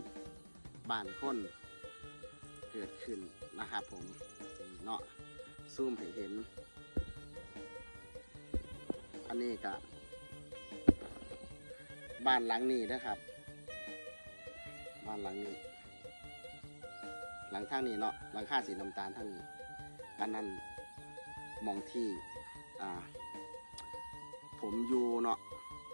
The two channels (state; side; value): inverted; both; correlation -1.00